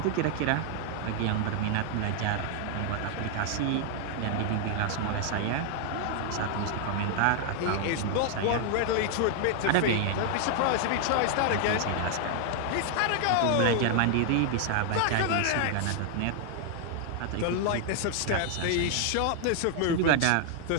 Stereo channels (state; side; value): different; both; correlation 0.00